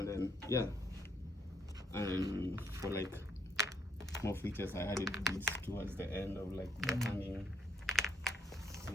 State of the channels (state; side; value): normal; both; correlation 0.71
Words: then yeah, and for like more features, I added these towards the end of like the hanging,